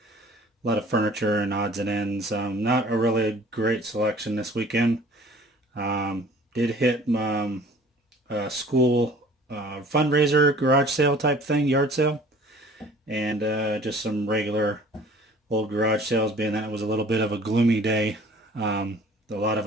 a lot of furniture and odds and ends. Not a really great selection this weekend. Did hit a school fundraiser garage sale type thing, yard sale, and just some regular old garage sales, being that it was a little bit of a gloomy day. A lot of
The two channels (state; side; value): normal; both; correlation 0.50